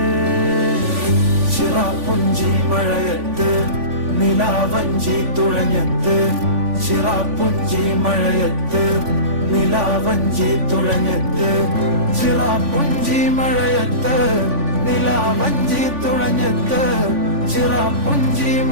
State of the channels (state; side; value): late; left; 3.5 ms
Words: ചിറാപ്പുഞ്ചി മഴയത്ത് നിലാവഞ്ചി തുഴഞ്ഞത്ത് ചിറാപ്പുഞ്ചി മഴയത്ത് നിലാവഞ്ചി തുഴഞ്ഞത്ത് ചിറാപ്പുഞ്ചി മഴയത്ത് നിലാവഞ്ചി തുഴഞ്ഞത്ത് ചിറാപ്പുഞ്ചി